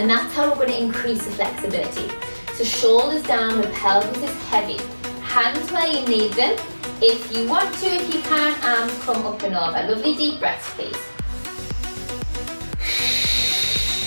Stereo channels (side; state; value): both; inverted; correlation -1.00